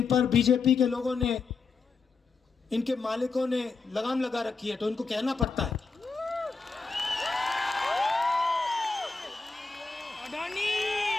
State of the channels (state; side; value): quieter; right; 4.5 dB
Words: पर बीजेपी के लोगों ने, इनके मालिकों ने लगाम लगा रखी है, तो इनको कहना पड़ता है।